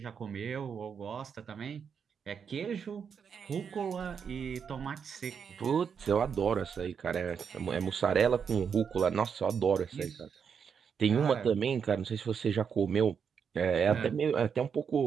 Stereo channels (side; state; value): left; quieter; 6.8 dB